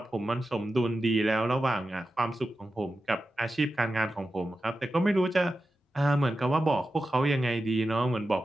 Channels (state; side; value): normal; both; correlation 0.92